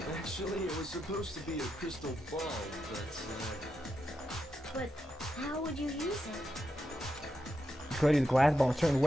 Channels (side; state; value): both; normal; correlation 0.86